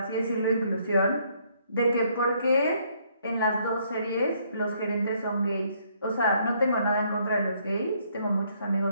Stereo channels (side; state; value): both; inverted; correlation -0.68